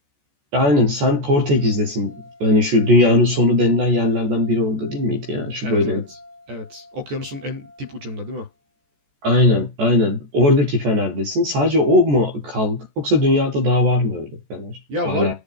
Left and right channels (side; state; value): left; late; 14 ms